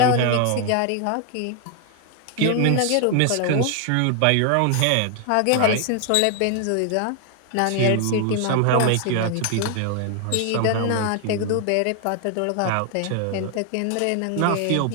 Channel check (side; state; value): both; different; correlation 0.00